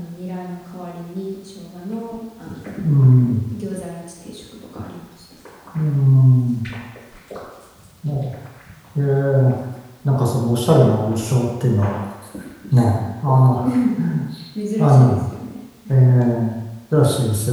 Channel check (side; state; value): both; identical; correlation 1.00